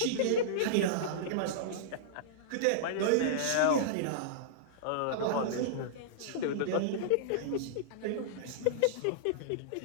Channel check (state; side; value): different; both; correlation -0.02